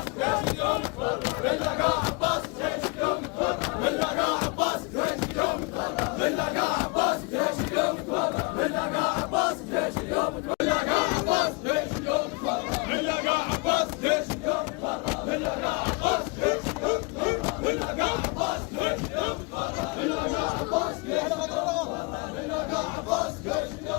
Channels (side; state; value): right; quieter; 29.1 dB